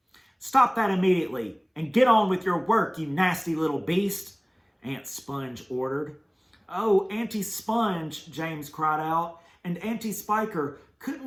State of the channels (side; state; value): both; identical; correlation 1.00